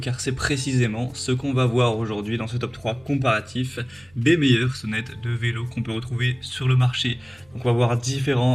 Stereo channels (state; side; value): noise; right; hum, 29 dB below the sound